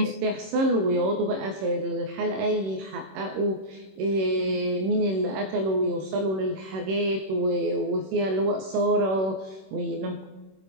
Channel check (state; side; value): late; left; 26 ms